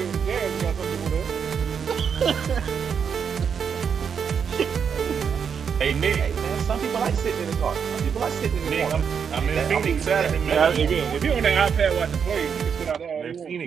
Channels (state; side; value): quieter; left; 6.9 dB